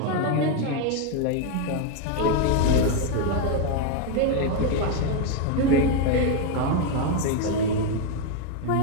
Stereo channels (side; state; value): both; different; correlation 0.01